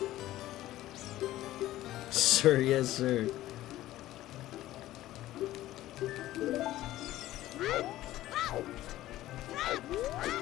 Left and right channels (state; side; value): quieter; right; 15.0 dB